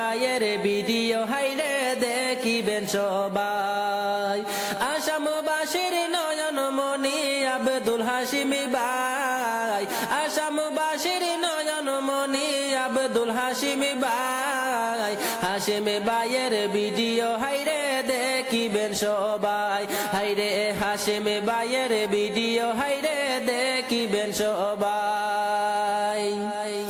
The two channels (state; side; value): identical; both; correlation 1.00